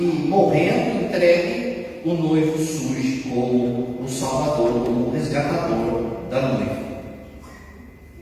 morrendo, entregue, o noivo surge como o salvador, como o resgatador da noiva.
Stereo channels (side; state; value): both; identical; correlation 1.00